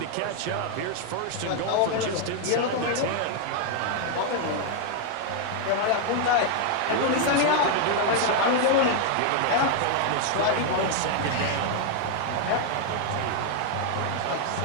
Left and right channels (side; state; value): both; different; correlation 0.00